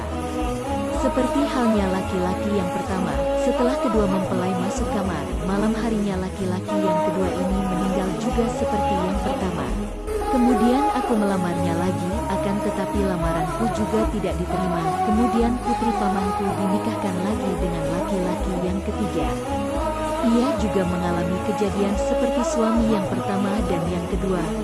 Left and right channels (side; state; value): both; identical; correlation 1.00